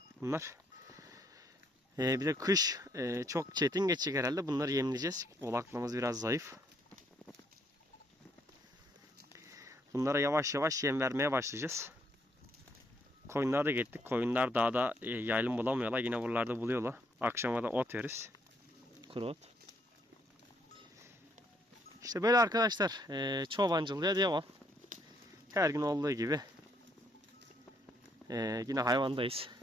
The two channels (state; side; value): normal; both; correlation 0.71